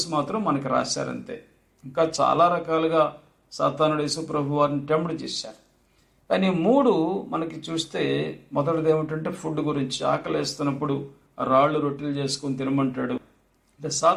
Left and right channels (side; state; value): both; identical; correlation 1.00